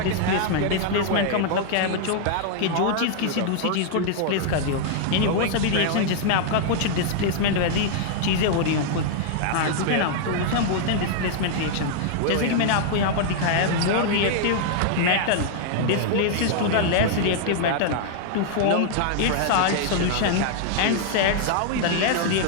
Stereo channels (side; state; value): both; different; correlation -0.01